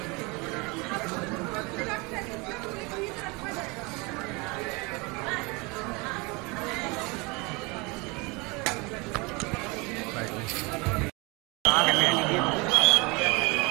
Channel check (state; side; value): quieter; left; 27.3 dB